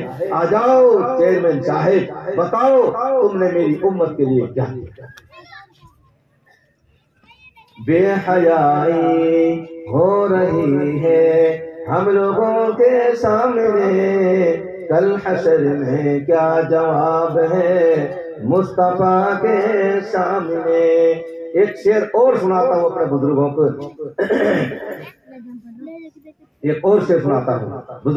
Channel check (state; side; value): identical; both; correlation 1.00